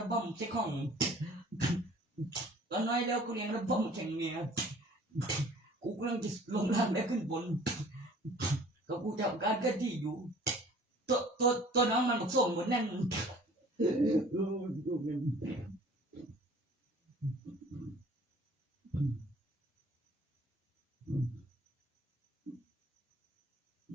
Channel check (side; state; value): both; normal; correlation 0.50